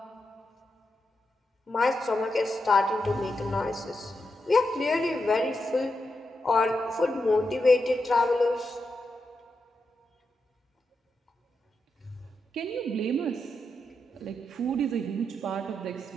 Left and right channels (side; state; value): both; normal; correlation 0.86